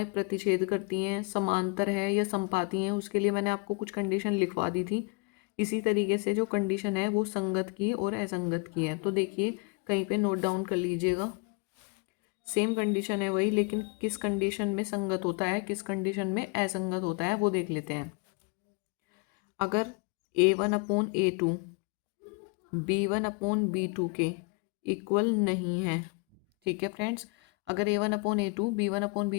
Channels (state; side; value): quieter; right; 30.7 dB